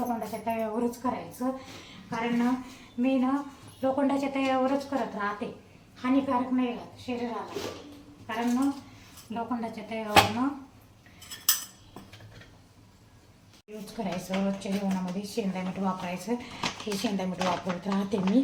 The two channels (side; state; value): both; identical; correlation 1.00